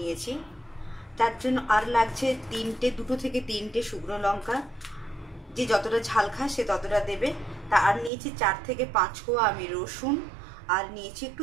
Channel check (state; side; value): drops out; left; at 8.1 s